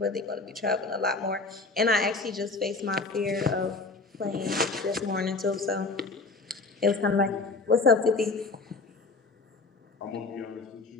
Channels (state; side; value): quieter; right; 3.7 dB